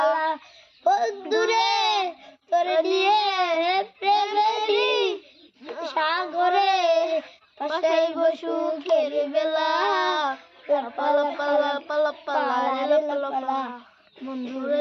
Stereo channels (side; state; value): both; identical; correlation 1.00